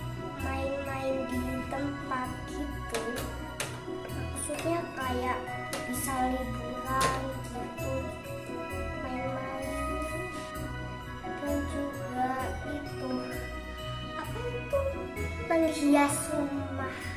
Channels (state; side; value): identical; both; correlation 1.00